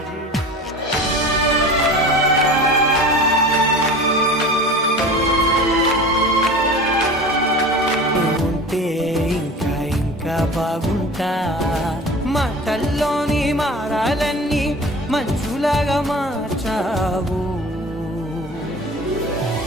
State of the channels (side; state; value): both; normal; correlation 0.37